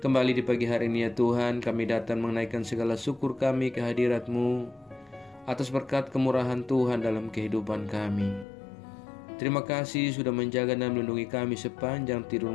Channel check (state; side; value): drops out; right; at 8.5 s